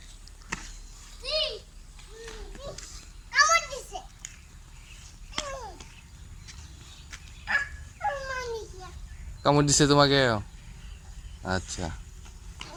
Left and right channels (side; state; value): both; identical; correlation 1.00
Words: কামড় দিছে তোমাকে? আচ্ছা,